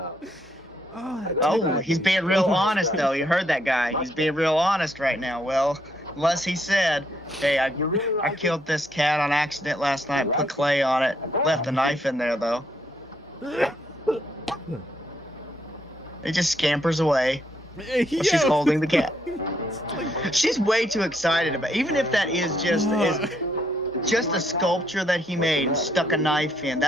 Oh, that Oh, cat- he's being real honest though. You heard that guy. He's being real honest right now. Well, unless he said, "Hey, I killed this cat on accident last night. Put clay on it. Left a knife in there though." It just scampers away while she's Yo. holding the cat. It's like- She's way too excited about. Even if that is just a sculpture that he made and stuck a knife in,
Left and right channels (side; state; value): both; normal; correlation 0.73